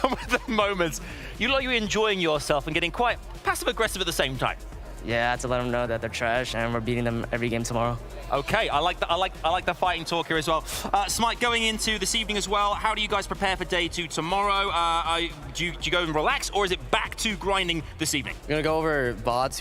of the moments. You look like you're enjoying yourself and getting quite passive-aggressive at the same time. Yeah, I had to let them know that they're trash, and we're beating them every game tomorrow. Okay, I like the fighting talk here as well. Smite, going into this evening as well, how do you guys prepare for day 2 tomorrow? Do you go and relax, or is it back to grinding this evening? We're gonna go over VOD,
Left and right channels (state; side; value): identical; both; correlation 1.00